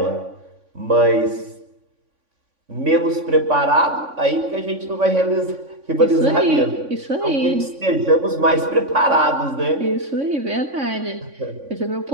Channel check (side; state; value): left; late; 3.5 ms